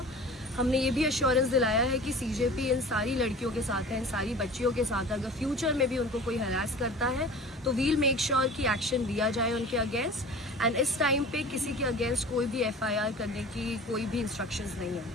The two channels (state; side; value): normal; both; correlation 0.40